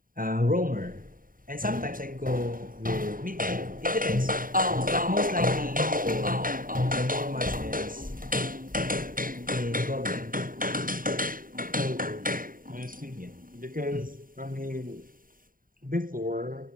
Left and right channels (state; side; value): late; left; 0.41 ms